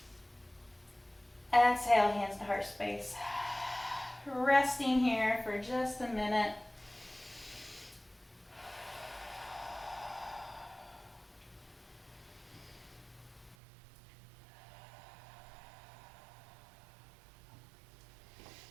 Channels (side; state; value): left; drops out; at 13.6 s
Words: Exhale, hands to heart space. Resting here for just a minute.